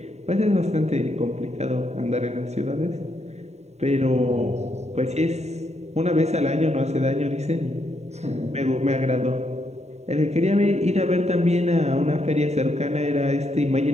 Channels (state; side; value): late; left; 0.32 ms